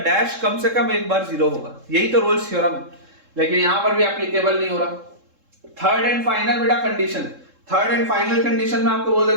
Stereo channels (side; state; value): left; late; 3.7 ms